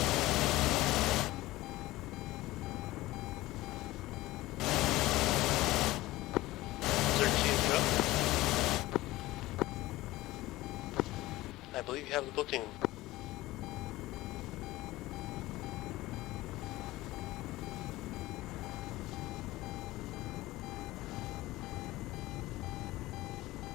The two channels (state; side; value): quieter; right; 18.0 dB